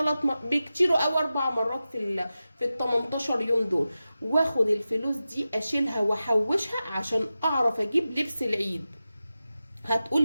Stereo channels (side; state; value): both; inverted; correlation -0.93